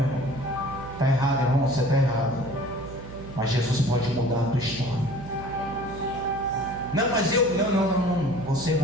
irmão, está errado, irmão, você está errado. Mas Jesus pode mudar a tua história. Não, mas eu, não, você é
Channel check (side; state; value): right; noise; hum, 13 dB below the sound